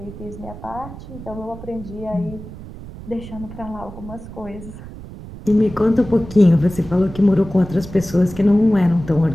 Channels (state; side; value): noise; right; rumble, 14 dB below the sound